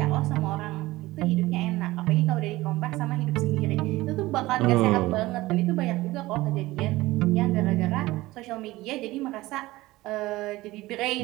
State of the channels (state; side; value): quieter; left; 18.7 dB